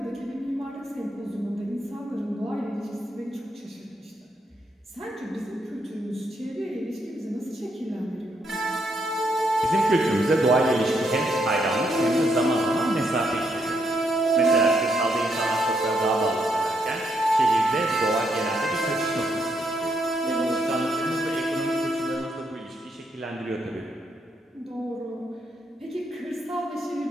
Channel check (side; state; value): both; normal; correlation 0.76